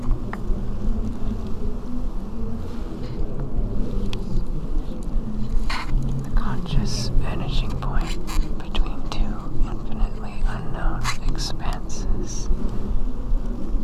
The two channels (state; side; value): identical; both; correlation 1.00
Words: The conscious vanishing point between two infinitely unknown expanses.